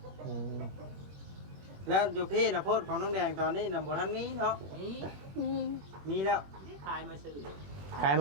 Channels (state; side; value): late; left; 21 ms